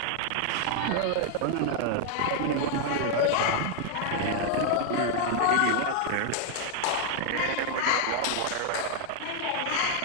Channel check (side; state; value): both; different; correlation 0.00